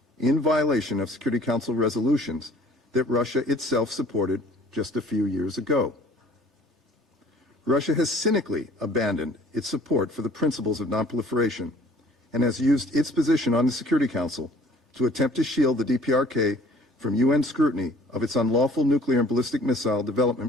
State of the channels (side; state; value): both; normal; correlation 0.53